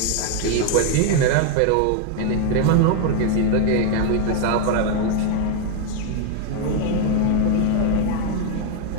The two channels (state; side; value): different; both; correlation 0.00